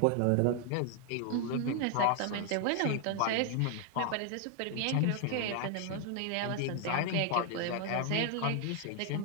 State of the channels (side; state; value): both; different; correlation 0.00